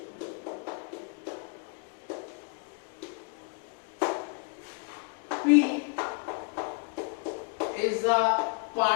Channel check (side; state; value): right; quieter; 35.2 dB